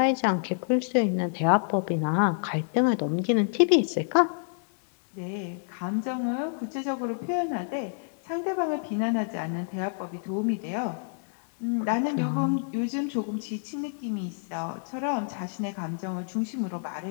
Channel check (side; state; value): right; silent; 59 dB below the other